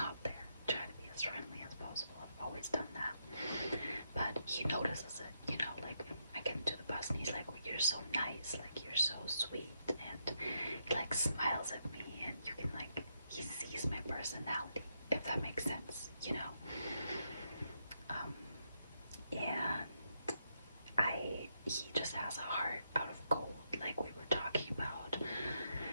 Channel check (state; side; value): inverted; both; correlation -0.80